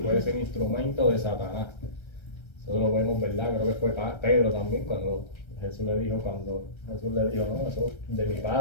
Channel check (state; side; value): late; right; 1.3 ms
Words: ser instrumento de Satanás. Eso lo vemos, ¿verdad? Creo que fue Pedro también cuando Jesús le dijo, no, eso de mi